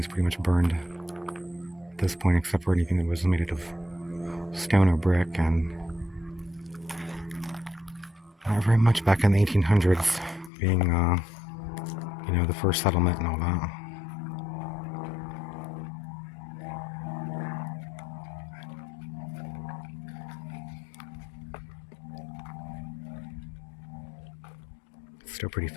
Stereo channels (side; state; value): right; drops out; at 10.5 s